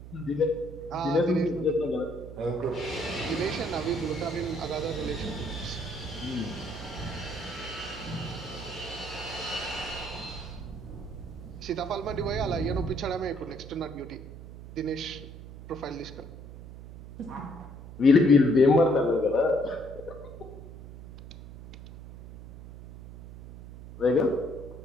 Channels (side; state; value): right; noise; hum, 14 dB below the sound